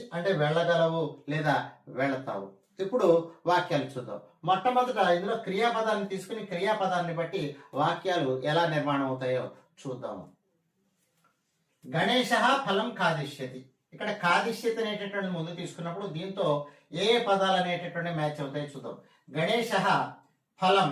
అంటే వెళ్ళగలవు లేదా వెళతావు. ఇప్పుడు వాక్యాలు చూద్దాం. మొట్టమొదట ఇందులో క్రియాపదాన్ని తీసుకుని క్రియాపదాన్ని బట్టి వాక్యాలు ఎలా నిర్మాణం అవుతాయో చూద్దాము. గణేశ ఫలం కాదిష్యతి. ఇక్కడ కాదిష్యతి అనేటటువంటి ముందు తీసుకున్నప్పుడు దీంతో ఏ పదాలు అనేటటువంటి మ్యాచ్ అవుతాయో చూద్దాం. గణేశ ఫలం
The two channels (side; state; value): both; identical; correlation 1.00